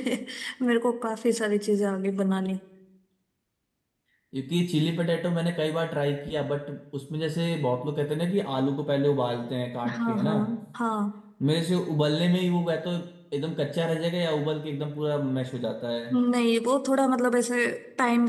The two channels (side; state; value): both; identical; correlation 1.00